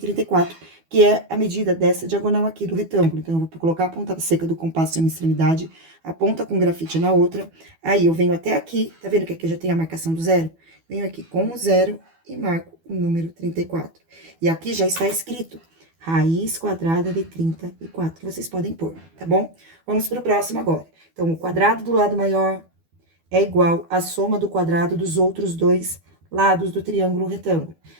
que é a medida dessa diagonal aqui do retângulo. Então, eu vou colocar a ponta seca do compasso em uma extremidade, a ponta com grafite na outra. Aí, eu venho até aqui, tá vendo que aqui já tem a marcação do zero? Venho aqui com o zero e marco o número 34. E aqui já está escrito raiz quadrada de 34. Vocês podem pôr, tá bom? Vamos para o próximo agora. Então, o quadrado do lado maior é igual à soma do quadrado dos outros dois lados do triângulo retângulo.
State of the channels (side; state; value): left; late; 12 ms